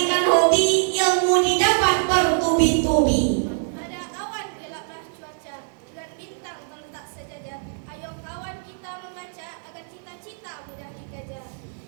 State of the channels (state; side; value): silent; left; 59 dB below the other